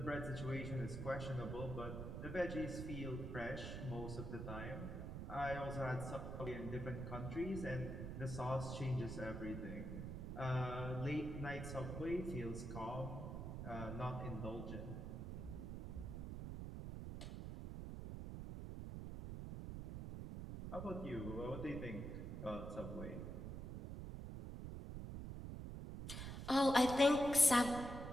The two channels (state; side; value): noise; right; rumble, 6 dB below the sound